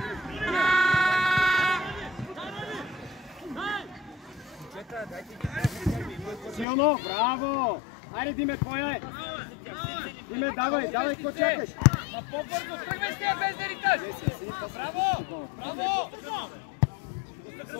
Силно! Браво! Айде, Диме, твоя е! Диме, давай, какво чакаш? На по-бързо, тръгвай с тия без да риташ! Браво! Браво!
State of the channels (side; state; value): right; drops out; at 6.7 s